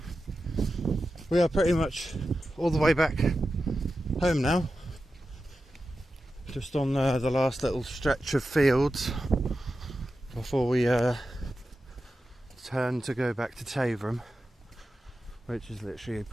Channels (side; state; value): both; normal; correlation 0.92